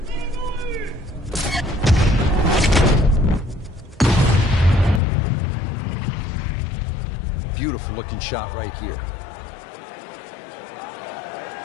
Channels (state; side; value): drops out; right; at 5.0 s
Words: beautiful looking shot right here.